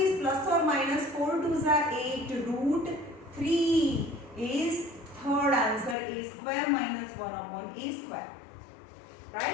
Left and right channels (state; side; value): drops out; right; at 6.0 s